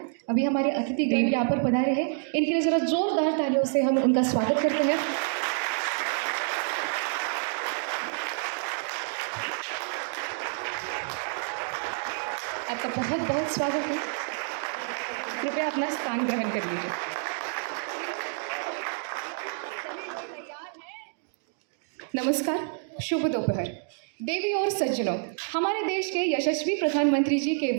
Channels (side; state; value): left; silent; 59 dB below the other